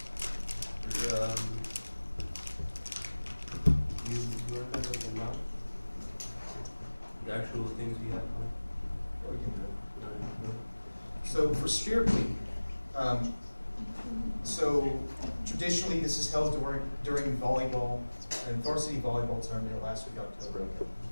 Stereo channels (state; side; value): inverted; both; correlation -1.00